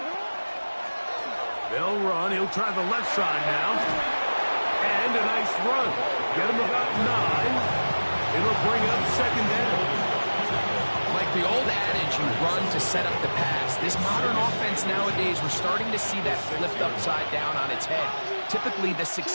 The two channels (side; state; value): both; inverted; correlation -1.00